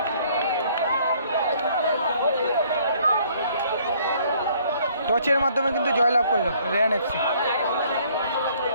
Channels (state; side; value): inverted; both; correlation -0.62